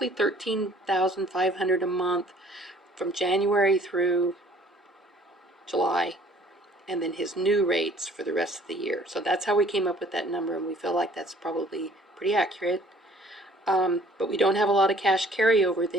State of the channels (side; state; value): both; normal; correlation 0.55